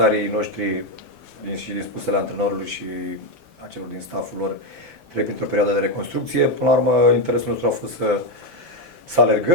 noștri și din spusele antrenorului și a celor din stafful lor trec printr-o perioadă de reconstrucție. Până la urmă, interesul nostru a fost să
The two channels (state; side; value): late; left; 2.8 ms